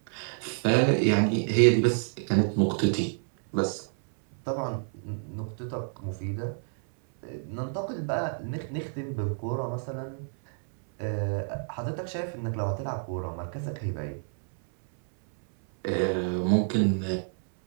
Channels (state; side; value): silent; left; 59 dB below the other